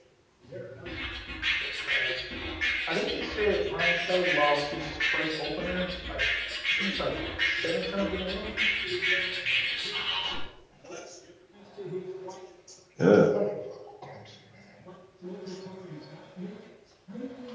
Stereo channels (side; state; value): both; identical; correlation 1.00